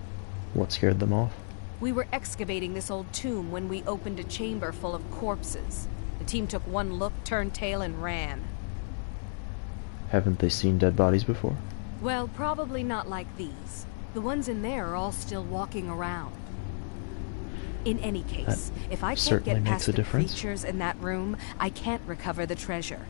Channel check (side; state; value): right; silent; 57 dB below the other